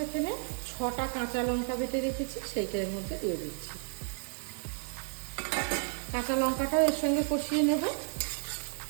এখানে 6টা কাঁচা লঙ্কা বেটে রেখেছি, সেইটার মধ্যে দিয়ে দিচ্ছি। কাঁচা লঙ্কাটাও এর সঙ্গে কষিয়ে নেব।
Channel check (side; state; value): left; silent; 56 dB below the other